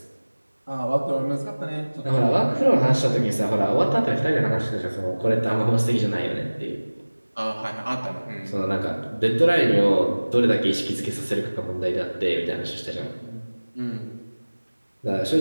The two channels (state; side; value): inverted; both; correlation -1.00